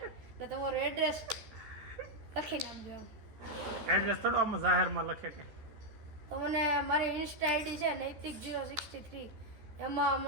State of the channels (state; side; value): late; left; 14 ms